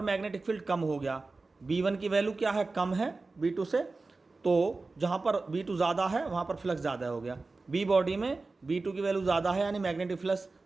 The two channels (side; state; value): left; quieter; 3.6 dB